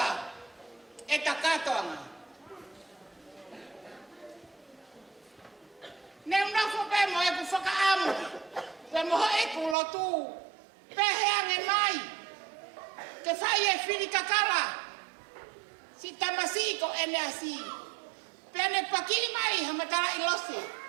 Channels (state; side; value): drops out; left; at 9.8 s